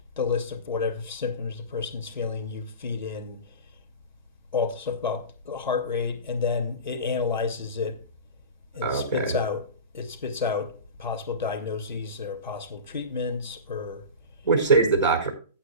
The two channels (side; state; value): both; inverted; correlation -0.31